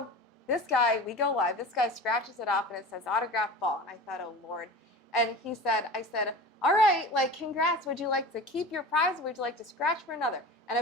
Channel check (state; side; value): normal; both; correlation 0.34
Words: this guy, we go live. This guy scratches it off, and it says autographed ball. And I thought, oh, Lord. And I said, all right, like, congrats. Would you like to keep your prize, or would you like to scratch for another? And,